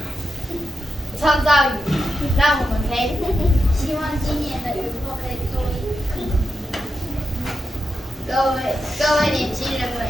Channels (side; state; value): both; normal; correlation 0.87